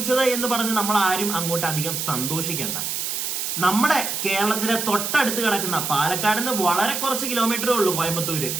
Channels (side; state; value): right; noise; hiss, 2 dB below the sound